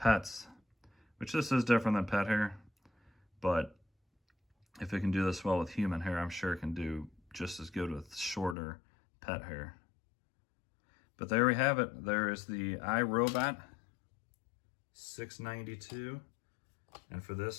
which this is different than pet hair, but if it can do this well with human hair, I'm sure it can do just as good with shorter pet hair. But there we have it. There is the iRobot 692. And for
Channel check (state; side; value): drops out; right; at 8.6 s